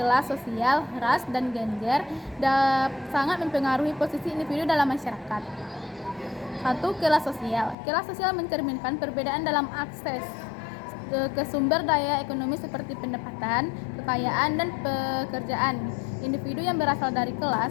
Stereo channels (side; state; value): right; drops out; at 7.8 s